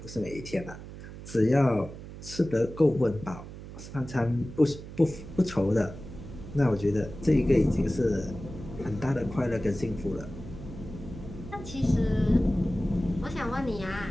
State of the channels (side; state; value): right; noise; hum, 13 dB below the sound